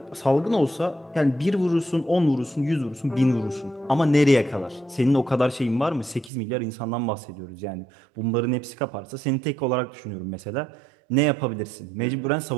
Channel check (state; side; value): drops out; left; at 6.3 s